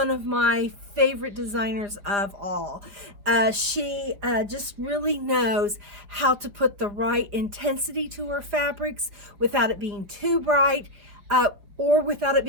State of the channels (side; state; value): left; late; 4.8 ms